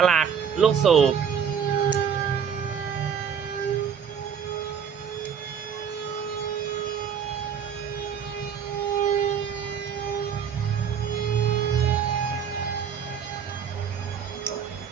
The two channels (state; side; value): quieter; left; 7.5 dB